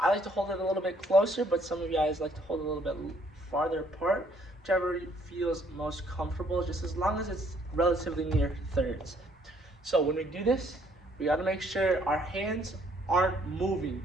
like to hold it a little bit closer, but some of you guys like to hold it a little bit farther apart. Whichever feels most comfortable, just as long as it's relatively near thirds. So when we do this, we got to make sure our hands aren't moving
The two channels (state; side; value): normal; both; correlation 0.65